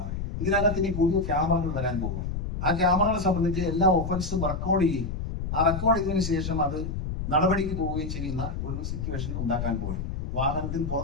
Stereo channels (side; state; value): left; noise; rumble, 4 dB below the sound